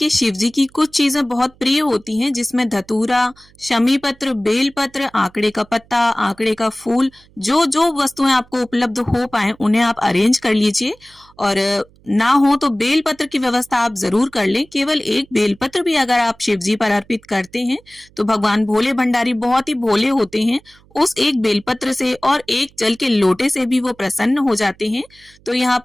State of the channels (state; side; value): noise; right; hum, 29 dB below the sound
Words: शिव जी की कुछ चीजें बहुत प्रिय होती हैं जिसमें धतूरा, शमी पत्र, बेल पत्र, आंकड़े का पत्ता, आंकड़े का फूल, जो जो वस्तुएं आपको उपलब्ध हो पाए उन्हें आप अरेंज कर लीजिए। और ना हो तो बेलपत्र की व्यवस्था आप जरूर कर लें। केवल एक बेलपत्र भी अगर आप शिव जी पर अर्पित करते हैं तो भगवान भोले भंडारी बहुत ही भोले होते हैं, उस एक बेलपत्र से और एक जल के लोटे से भी वो प्रसन्न हो जाते हैं। तो यहाँ